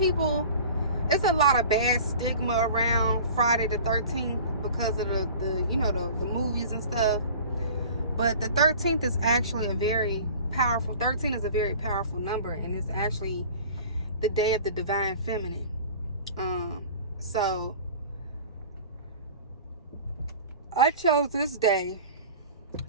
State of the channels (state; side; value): inverted; both; correlation -0.42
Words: it's a lot of bad stigma around Friday the 13th because of the movies and stuff. But the 13th is actually a very powerful, 13 is a very powerful number, and it's actually the day of the divine feminine. So I chose this day